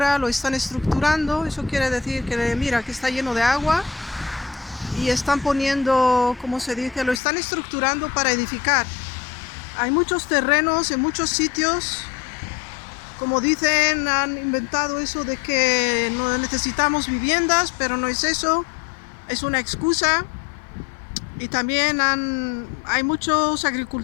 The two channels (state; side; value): drops out; right; at 7.2 s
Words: lo están estructurando. Eso quiere decir que mira que está lleno de agua y están poniendo, ¿cómo se dice? Lo están estructurando para edificar. Hay muchos terrenos en muchos sitios. Como dicen, han inventado eso de que no necesitamos viviendas, pero no es eso, es una excusa. Y también hay muchos